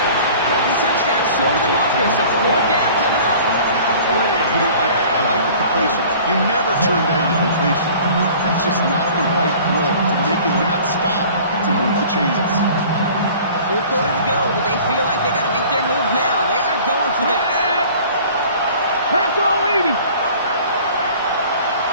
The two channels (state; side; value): inverted; both; correlation -0.47